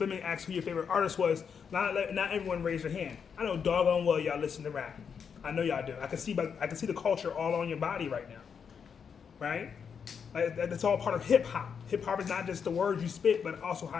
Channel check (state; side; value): quieter; right; 6.7 dB